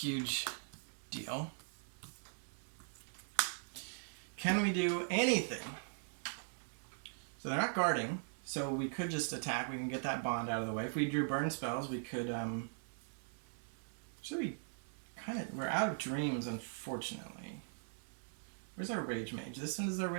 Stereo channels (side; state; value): left; silent; digital silence